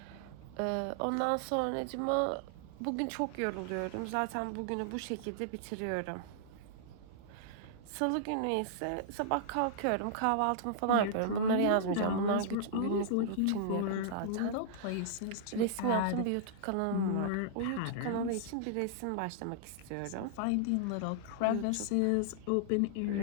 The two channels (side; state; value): both; different; correlation -0.01